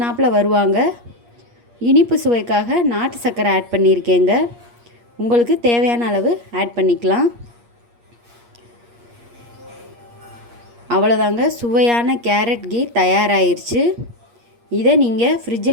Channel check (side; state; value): left; late; 8.5 ms